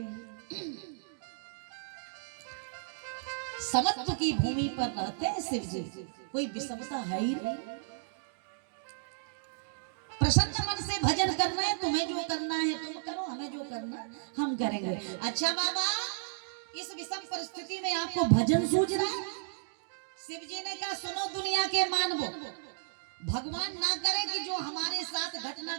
समत्व की भूमि पर रहते हैं शिव जी, कोई विषमता है ही नहीं। प्रसन्न मन से भजन करना है, तुम्हें जो करना है तुम करो, हमें जो करना हम करेंगे। अच्छा बाबा, इस विषम परिस्थिति में आपको भजन सूझ रहा है? शिव जी ने कहा सुनो दुनिया के मानवो, भगवान ना करे कि जो हमारे साथ घटना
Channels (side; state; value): left; silent; digital silence